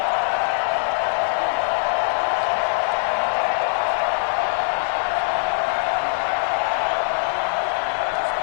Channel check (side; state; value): right; silent; 63 dB below the other